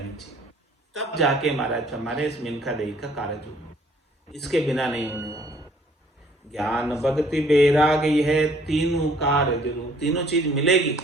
चाहिए। तब जाके महाराज हमारे इस मिनखा देही का कार्य होगा, इसके बिना नहीं होने वाला। ज्ञान भक्ति वैराग यह तीनों कार्य जरूर, तीनों चीज मिलेगी,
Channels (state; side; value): normal; both; correlation 0.59